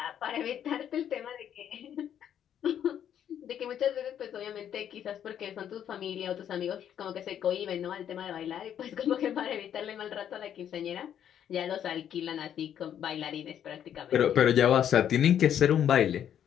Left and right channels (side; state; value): right; quieter; 9.6 dB